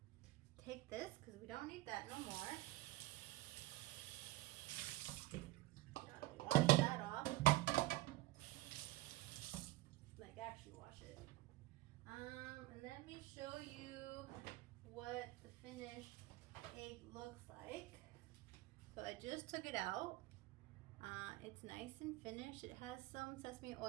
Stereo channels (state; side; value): quieter; left; 18.4 dB